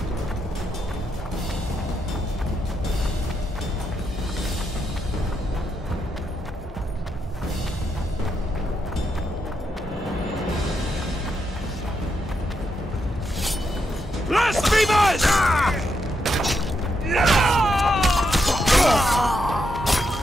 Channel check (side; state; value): both; normal; correlation 0.81